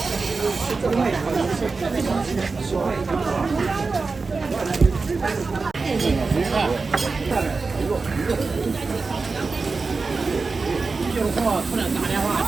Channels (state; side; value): quieter; left; 4.2 dB